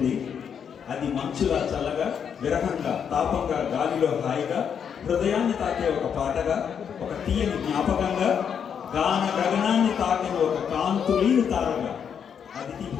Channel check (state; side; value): quieter; right; 7.6 dB